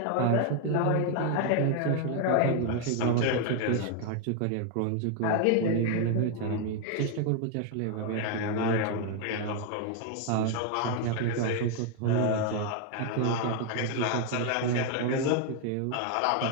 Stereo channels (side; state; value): both; different; correlation 0.00